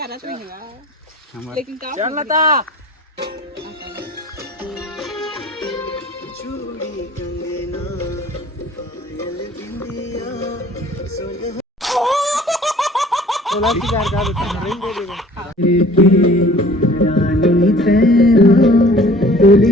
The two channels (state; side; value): normal; both; correlation 0.50